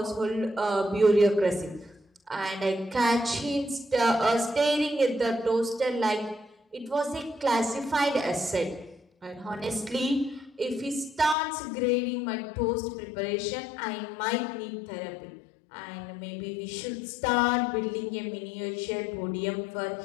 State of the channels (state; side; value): drops out; right; at 11.4 s